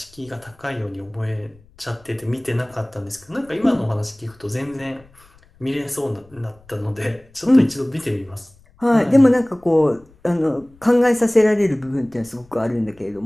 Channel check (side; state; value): left; noise; rumble, 28 dB below the sound